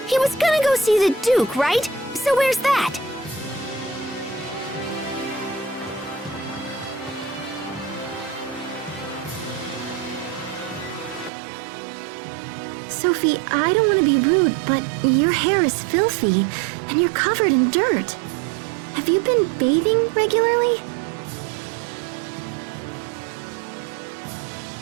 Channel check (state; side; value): drops out; left; at 11.3 s